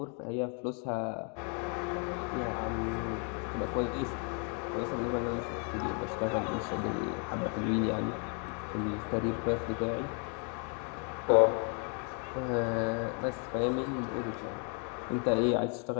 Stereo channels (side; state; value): right; quieter; 39.1 dB